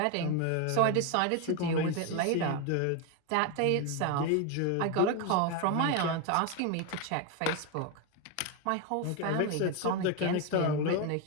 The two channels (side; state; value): both; different; correlation 0.02